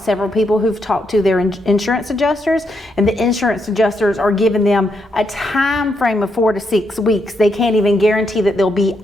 people who've talked to their insurance adjusters, and the insurance adjusters are giving them a time frame of 4 to 6 weeks. They can't even guarantee that they'll be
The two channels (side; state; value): both; normal; correlation 0.79